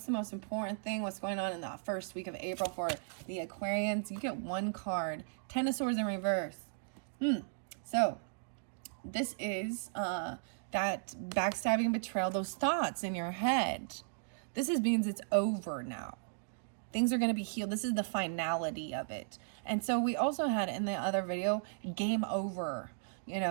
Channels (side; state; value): left; silent; digital silence